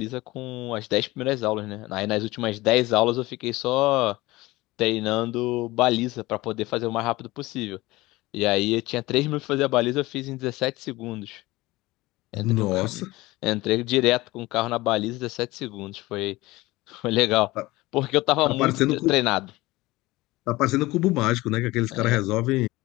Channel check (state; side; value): quieter; right; 19.9 dB